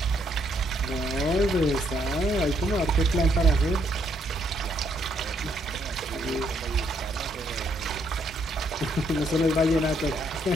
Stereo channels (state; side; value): normal; both; correlation 0.72